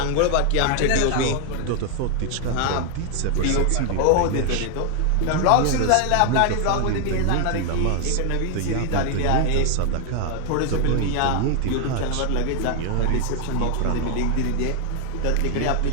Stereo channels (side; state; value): both; different; correlation 0.00